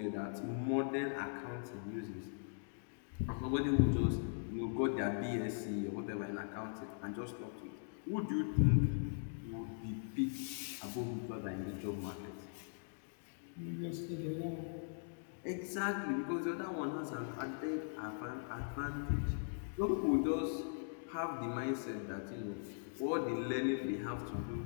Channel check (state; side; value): silent; right; digital silence